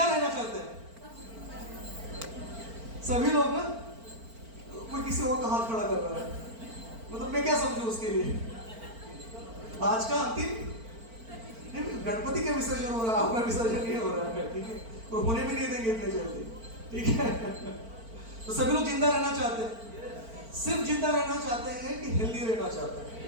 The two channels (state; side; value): late; left; 4.4 ms